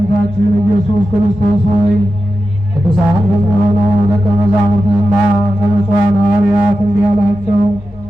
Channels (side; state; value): both; normal; correlation 0.92